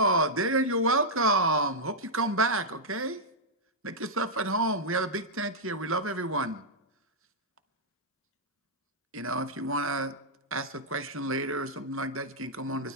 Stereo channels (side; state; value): both; normal; correlation -0.07